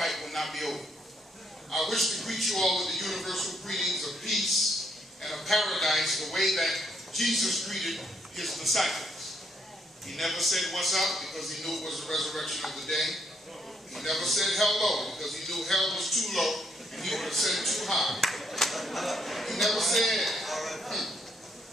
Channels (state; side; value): normal; both; correlation 0.73